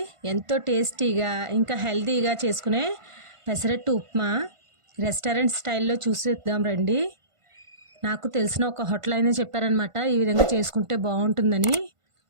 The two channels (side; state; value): left; late; 1.5 ms